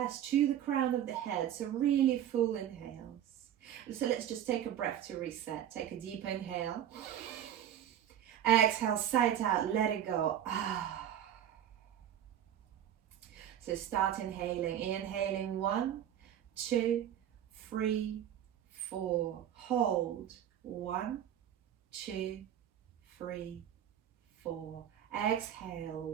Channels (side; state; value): left; quieter; 10.5 dB